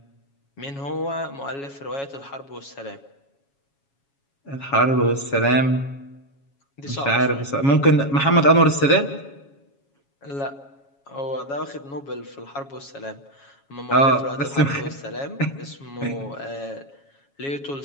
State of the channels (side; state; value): right; late; 7.2 ms